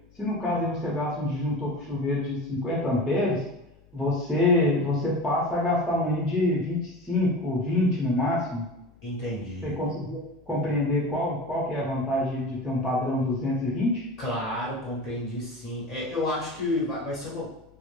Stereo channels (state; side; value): noise; left; hum, 28 dB below the sound